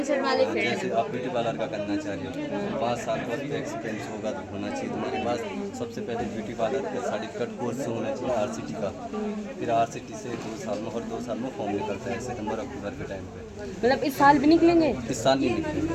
वाले फील्ड। जैसे आप ब्यूटी पार्लर का करना चाह रहे हो, 5 साल का एक्सपीरियंस होगा तो होना चाहिए तुम्हारे पास। सबसे पहले ब्यूटी पार्लर का सर्टिफिकेट कोर्स होना चाहिए आरसीटी का। फिर आरसीटी से 2 साल में, और 2 साल में फॉर्म निकलता है सितंबर अक्टूबर के टाइम पे। मतलब इस साल भी निकलेंगे? इस साल नहीं निकलेंगे,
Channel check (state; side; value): identical; both; correlation 1.00